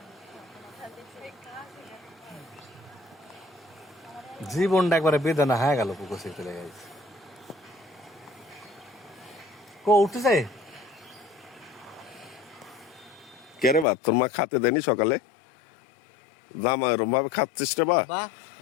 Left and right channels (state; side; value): drops out; right; at 13.9 s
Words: জীবনটা একবারে বেদনা হয়ে গেল। পুকুর থেকে চলে গেছে, কো উঠতেছে কে রে বা? তোর মা খাতে দেনি সকালে? জামা এরম ভাবে খাচ্ছিস রে বা?